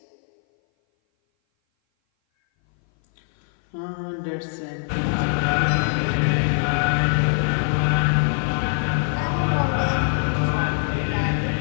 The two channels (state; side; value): silent; right; 58 dB below the other